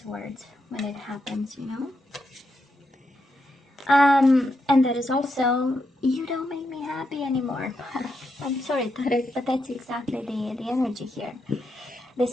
words when it happens, you know? And that is also, you don't make me happy anymore. I'm sorry, Taurus, but that's exactly the energy here. The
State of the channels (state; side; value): normal; both; correlation 0.83